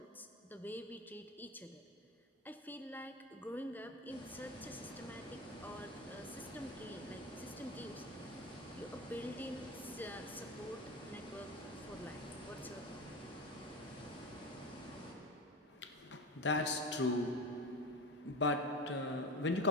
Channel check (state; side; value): normal; both; correlation 0.26